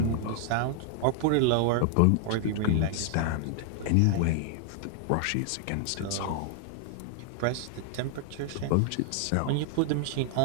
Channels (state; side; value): different; both; correlation 0.00